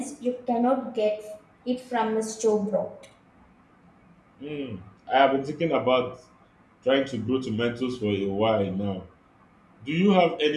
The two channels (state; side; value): identical; both; correlation 1.00